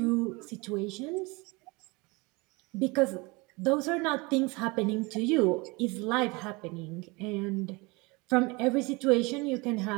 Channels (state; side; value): quieter; left; 26.0 dB